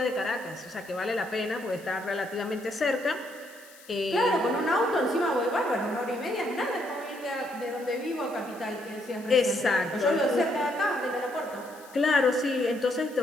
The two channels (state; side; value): noise; left; hiss, 22 dB below the sound